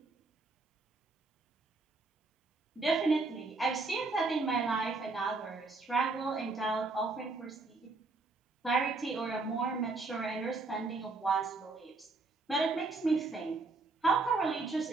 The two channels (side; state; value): left; quieter; 3.6 dB